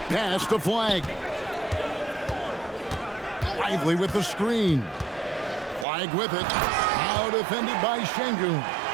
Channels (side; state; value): left; drops out; at 5.9 s